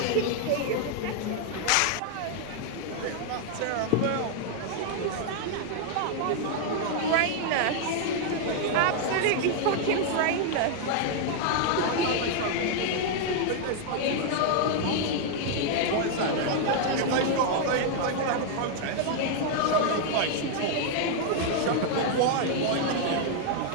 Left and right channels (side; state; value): both; different; correlation 0.00